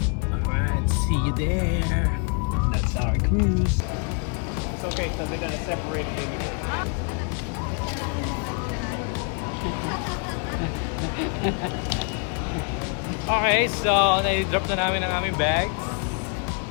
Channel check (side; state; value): right; quieter; 37.8 dB